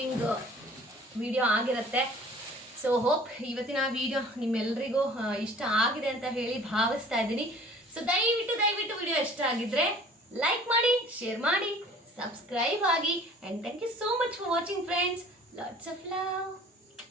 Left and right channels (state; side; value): normal; both; correlation 0.49